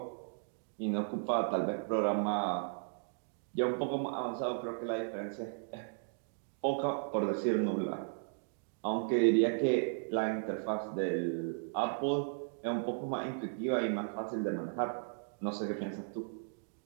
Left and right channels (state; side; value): silent; left; digital silence